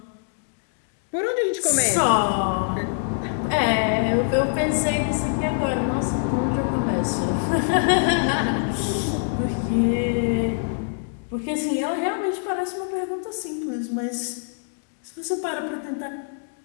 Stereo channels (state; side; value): silent; right; digital silence